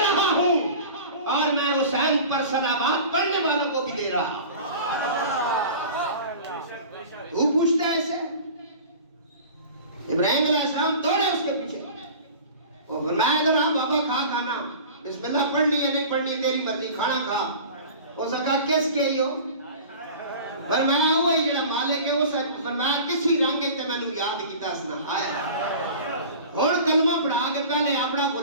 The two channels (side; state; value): both; inverted; correlation -0.39